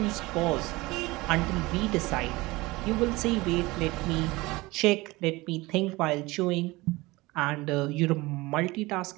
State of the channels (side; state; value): left; quieter; 21.5 dB